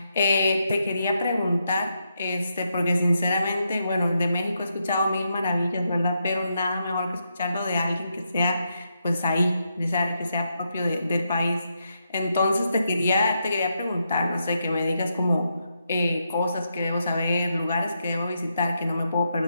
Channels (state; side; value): inverted; both; correlation -0.82